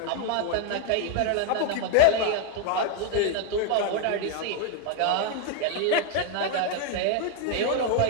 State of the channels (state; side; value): different; both; correlation 0.01